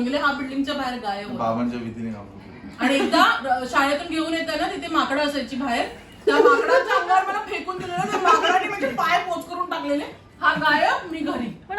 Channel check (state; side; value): identical; both; correlation 1.00